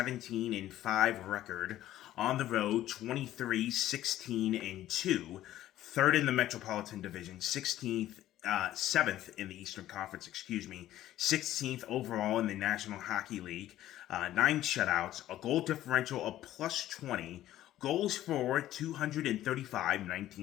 and 5 record. On the road, 23, 16, and 2. Third in the Metropolitan Division, 7th in the Eastern Conference, 16th overall in the National Hockey League. 9 shutouts, a goal differential of plus 20, goals for 235,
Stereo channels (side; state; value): right; quieter; 13.6 dB